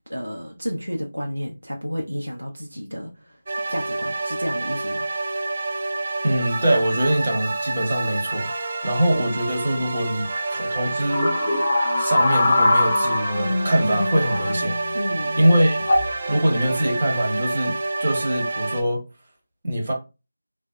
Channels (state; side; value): inverted; both; correlation -0.94